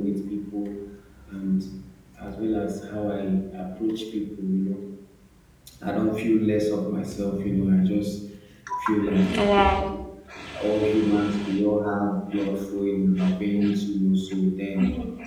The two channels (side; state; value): both; identical; correlation 1.00